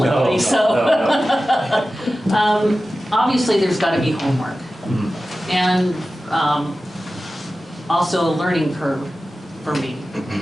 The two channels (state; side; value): normal; both; correlation 0.94